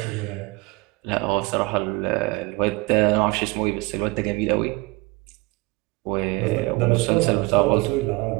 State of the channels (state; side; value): quieter; left; 24.1 dB